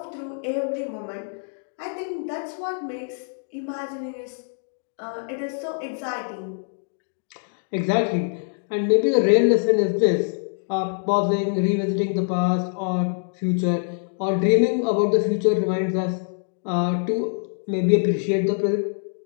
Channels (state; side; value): silent; right; 62 dB below the other